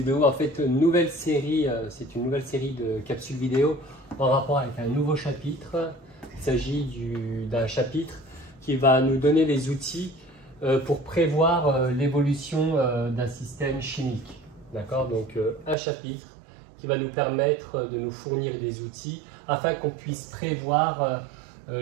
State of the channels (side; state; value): left; drops out; at 15.8 s